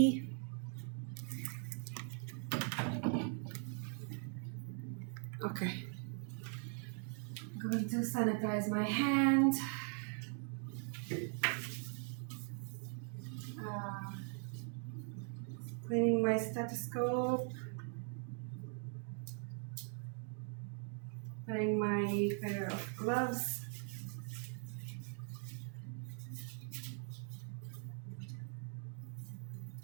Okay. I'm going to sanitize my hand. Cleaning my stethoscope. Putting my pair of gloves.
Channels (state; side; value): silent; left; 50 dB below the other